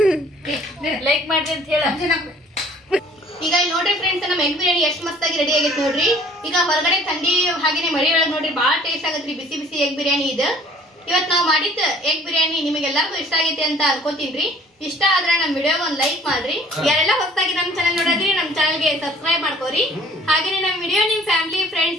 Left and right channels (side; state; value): both; normal; correlation 0.54